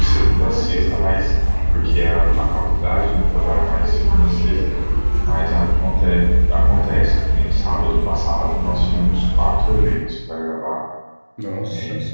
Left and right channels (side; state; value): both; inverted; correlation -1.00